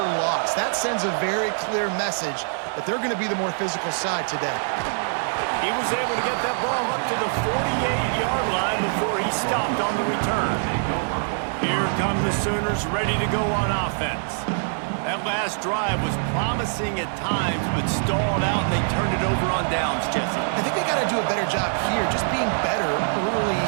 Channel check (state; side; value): silent; left; digital silence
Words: loss. That sends a very clear message that they're going to be the more physical side today. He was able to get that ball up to the 48-yard line before he stopped on the return. Here come the Sooners ready to go on offense. That last drive was promising at times, but stalled out, and they turned it over on downs, Jesse. I think they got to do a better job here, just being better early